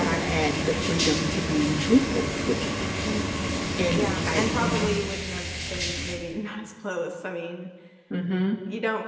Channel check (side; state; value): both; identical; correlation 1.00